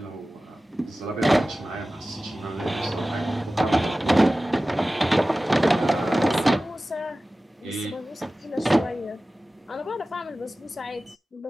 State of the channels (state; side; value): normal; both; correlation 0.96